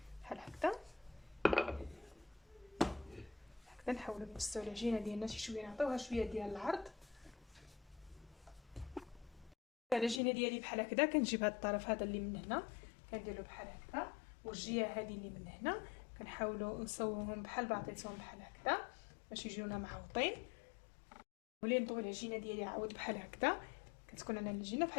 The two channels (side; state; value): right; drops out; at 10.2 s